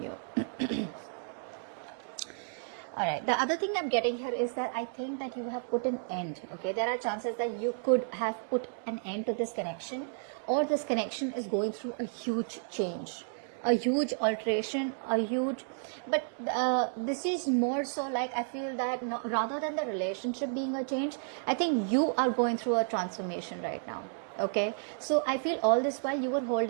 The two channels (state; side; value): silent; left; digital silence